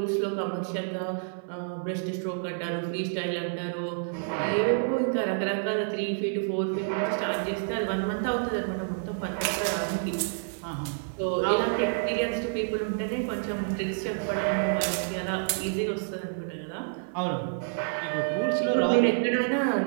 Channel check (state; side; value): silent; left; 59 dB below the other